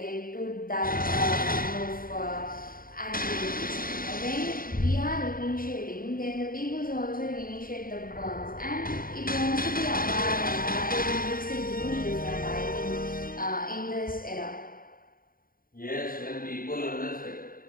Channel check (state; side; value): late; right; 0.41 ms